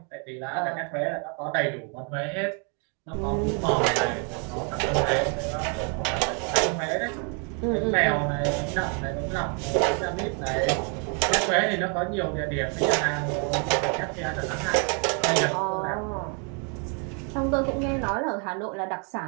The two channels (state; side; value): quieter; left; 37.9 dB